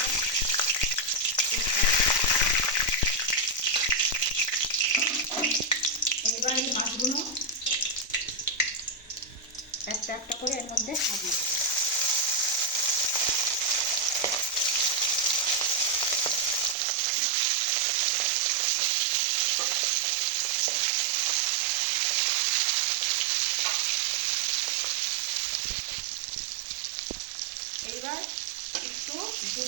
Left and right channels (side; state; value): left; drops out; at 16.8 s